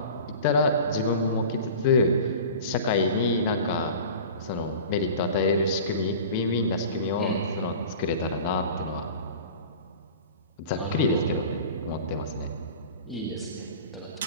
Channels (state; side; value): inverted; both; correlation -0.38